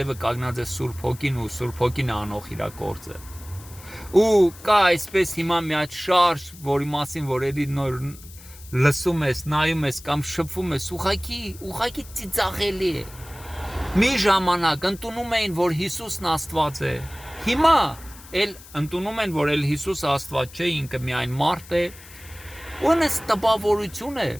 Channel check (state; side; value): noise; left; hiss, 19 dB below the sound